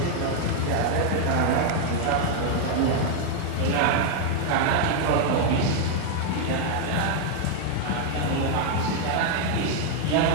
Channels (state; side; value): different; both; correlation 0.00